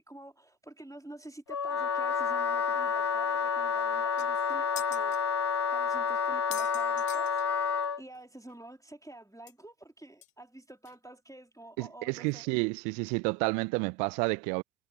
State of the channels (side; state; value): both; normal; correlation 0.28